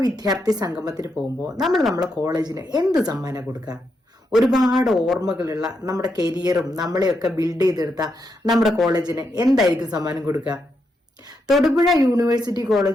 വിദ്യാർത്ഥി സംഗമത്തിന് പോകുമ്പോൾ നമ്മളെ കോളേജിന് എന്ത് സമ്മാനം കൊടുക്കുക? ഒരുപാട് ഓർമ്മകളുള്ള നമ്മുടെ കരിയറും നമ്മളെയൊക്കെ ബിൽഡ് ചെയ്തെടുത്ത നമ്മുടെ കോളേജിന് എന്തായിരിക്കും സമ്മാനം കൊടുക്കുക? തൊടുപുഴ യൂണിവേഴ്സിറ്റി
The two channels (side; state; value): both; normal; correlation 0.82